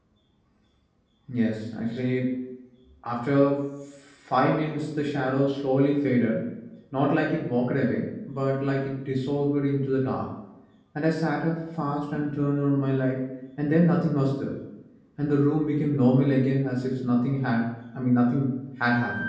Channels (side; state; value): both; identical; correlation 1.00